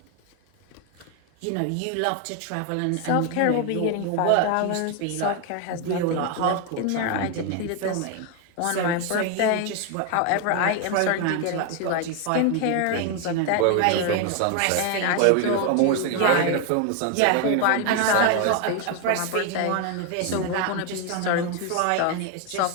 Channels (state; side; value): different; both; correlation 0.01